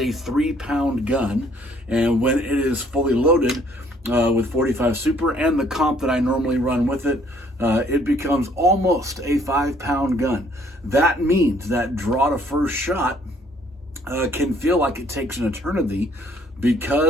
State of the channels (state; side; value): normal; both; correlation 0.62